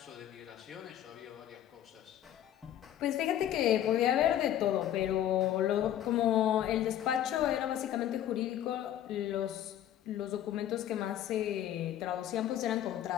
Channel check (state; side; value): quieter; right; 11.4 dB